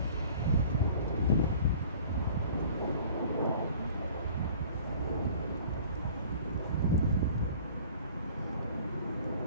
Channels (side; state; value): both; inverted; correlation -0.48